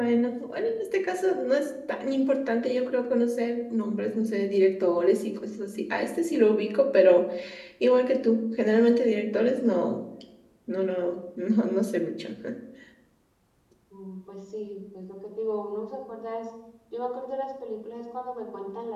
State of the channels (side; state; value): both; identical; correlation 1.00